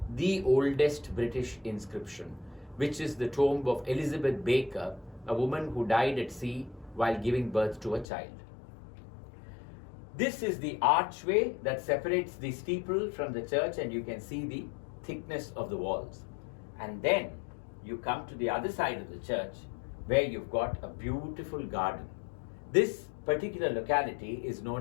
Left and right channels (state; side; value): drops out; right; at 8.1 s